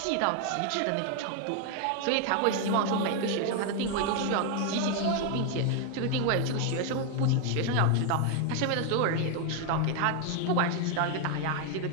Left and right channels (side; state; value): both; different; correlation 0.01